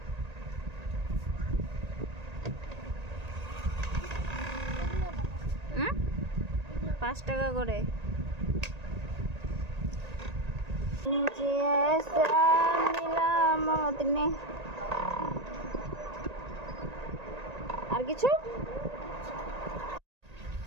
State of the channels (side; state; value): left; late; 1.9 ms